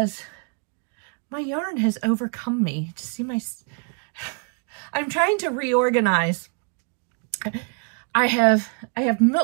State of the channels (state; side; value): quieter; left; 38.8 dB